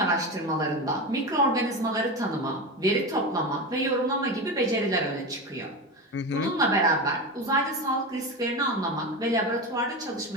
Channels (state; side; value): normal; both; correlation 0.22